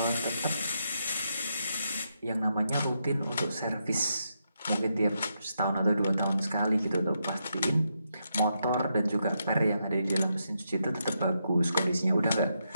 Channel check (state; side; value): inverted; both; correlation -0.82